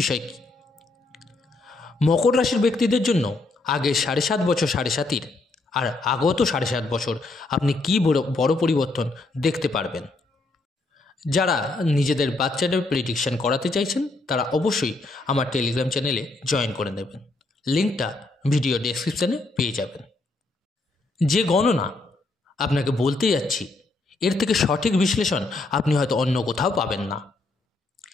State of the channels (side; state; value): right; quieter; 3.2 dB